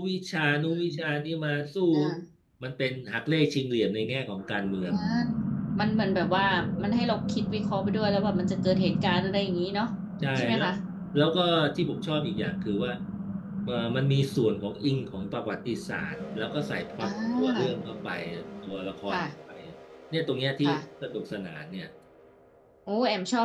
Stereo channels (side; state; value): both; identical; correlation 1.00